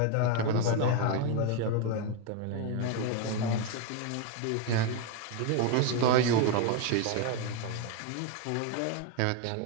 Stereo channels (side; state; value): both; different; correlation 0.01